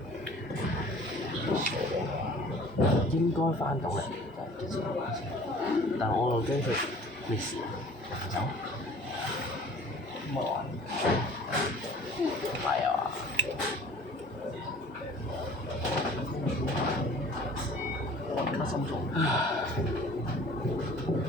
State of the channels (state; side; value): normal; both; correlation 0.48